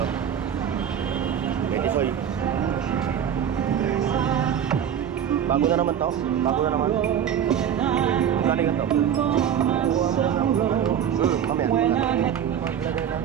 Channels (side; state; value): left; quieter; 9.0 dB